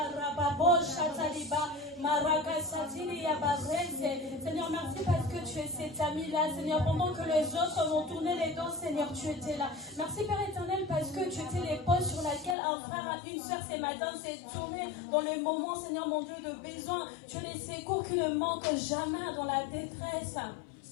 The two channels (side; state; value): right; drops out; at 12.6 s